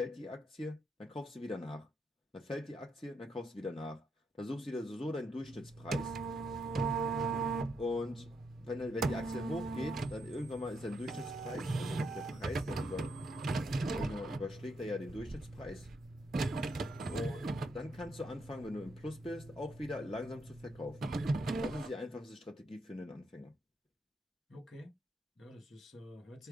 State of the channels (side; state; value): both; normal; correlation 0.78